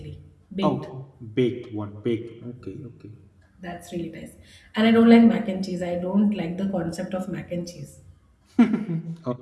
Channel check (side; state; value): both; identical; correlation 1.00